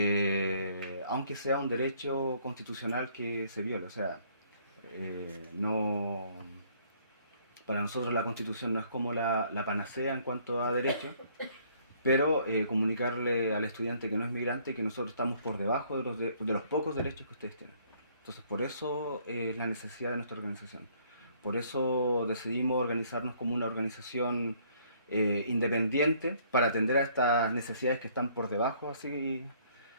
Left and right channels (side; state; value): both; inverted; correlation -0.62